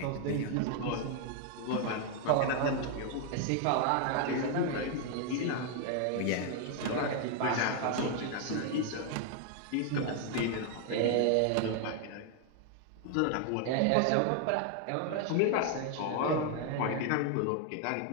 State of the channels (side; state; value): both; different; correlation 0.00